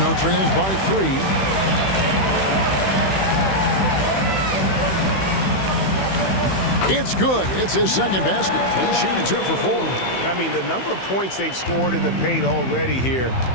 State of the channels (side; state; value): right; late; 15 ms